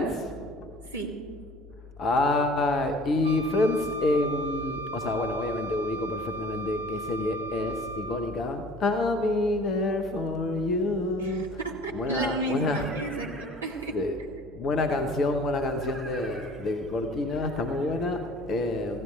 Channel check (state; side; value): normal; both; correlation 0.49